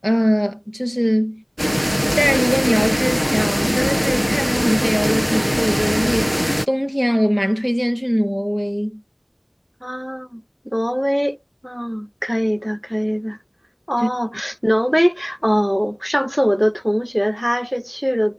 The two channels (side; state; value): both; identical; correlation 1.00